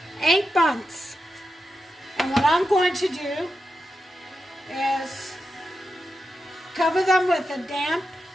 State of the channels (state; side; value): normal; both; correlation 0.88